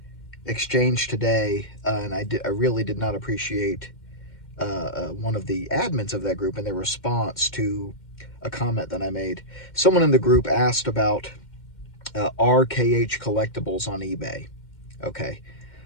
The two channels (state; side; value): late; right; 2.1 ms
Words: exchange today, and I really did not appreciate one of the admins of that group and their response to a comment that I made. Someone in the group asked about RKH Collectibles on eBay. Okay.